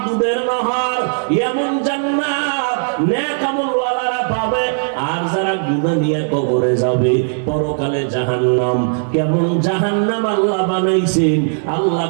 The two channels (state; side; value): silent; left; 67 dB below the other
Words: দুধের নহর। এমন জান্নাত নেক আমলওয়ালারা পাবে। আর যারা গুনাহ নিয়ে কবরে যাবে, পরকালে জাহান্নাম। কেমন জাহান্নাম আল্লাহ বানাইছেন, আল্লাহ